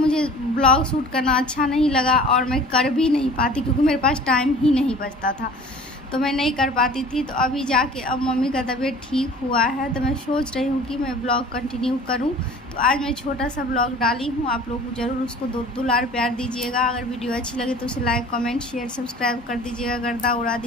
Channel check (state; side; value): normal; both; correlation 0.45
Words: ब्लॉग शूट करना अच्छा नहीं लगा और मैं कर भी नहीं पाती, क्योंकि मेरे पास टाइम ही नहीं बचता था, तो मैं नहीं कर पाती थी। तो अभी जाके अब मम्मी का तबीयत ठीक हुआ है, तो मैं सोच रही हूँ कि मैं ब्लॉग कंटिन्यू करूँ। तो आज मैं छोटा सा ब्लॉग डाली हूँ। आप लोग ज़रूर उसको दुलार प्यार दीजिएगा। अगर वीडियो अच्छी लगे तो उसे लाइक, कमेंट, शेयर, सब्सक्राइब कर दीजिएगा, गर्दा उड़ा